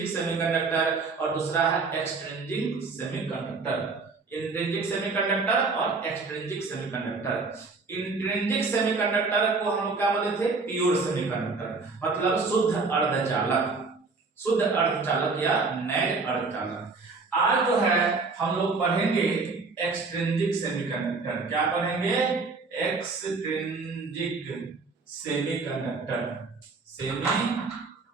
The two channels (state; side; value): quieter; left; 4.2 dB